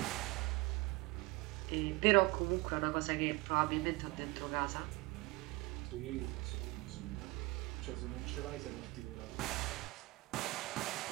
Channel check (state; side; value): quieter; left; 22.4 dB